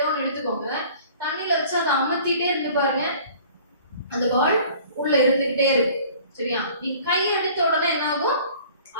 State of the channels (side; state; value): both; inverted; correlation -0.50